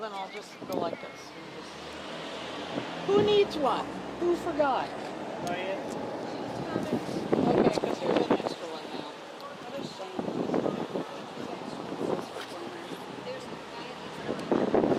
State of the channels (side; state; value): both; identical; correlation 1.00